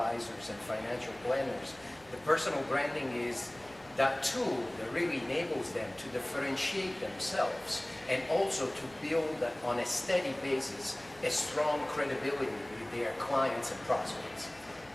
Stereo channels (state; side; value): noise; left; hum, 27 dB below the sound